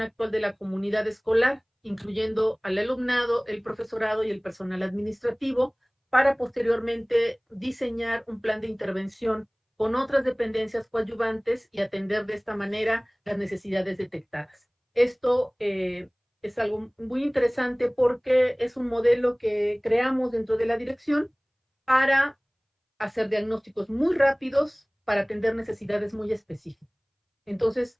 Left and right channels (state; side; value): identical; both; correlation 1.00